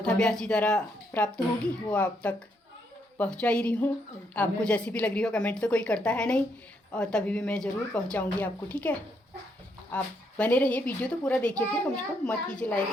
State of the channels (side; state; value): both; normal; correlation 0.75